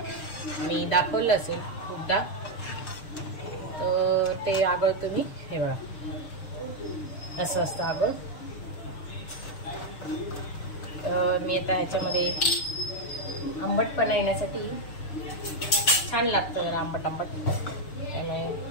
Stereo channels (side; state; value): right; late; 6.6 ms